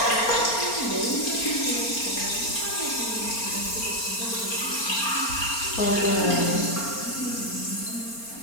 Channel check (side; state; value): right; late; 4.3 ms